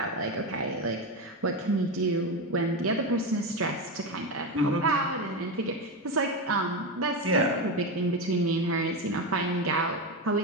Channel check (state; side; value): normal; both; correlation 0.15